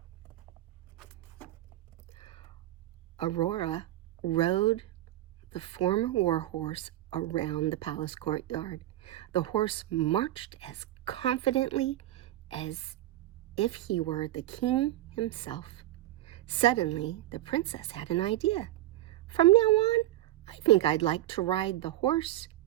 Aurora rode the former war horse around the palace courtyard. The horse marched as confidently as if he were the king himself. Suddenly, the princess had an idea. From now on, I think I'd like to ride the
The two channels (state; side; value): quieter; left; 14.9 dB